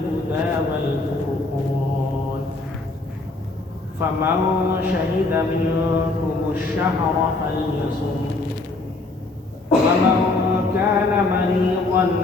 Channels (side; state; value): right; quieter; 3.2 dB